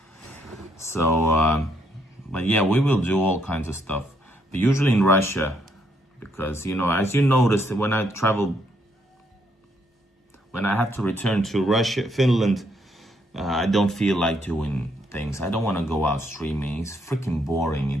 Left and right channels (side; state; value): both; normal; correlation 0.73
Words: So, but yeah, we will do all kinds of stuff. But usually in Russia, because, you know, as you noticed, when I have to return to Russia, Finland, I don't feel like doing things. I don't want to go out streaming. It's freaking boring.